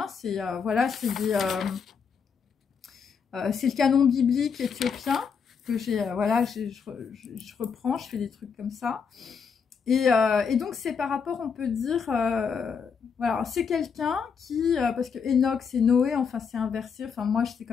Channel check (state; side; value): quieter; right; 6.2 dB